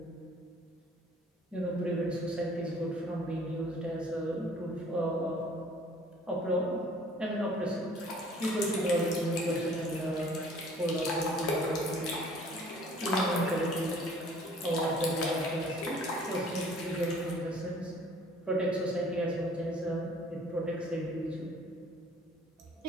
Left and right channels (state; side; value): normal; both; correlation 0.54